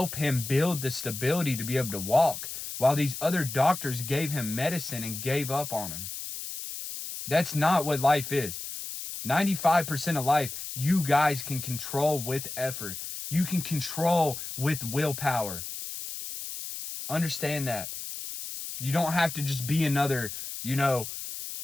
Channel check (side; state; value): left; noise; hiss, 8 dB below the sound